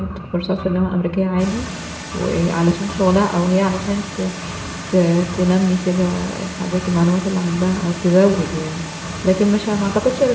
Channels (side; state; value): both; identical; correlation 1.00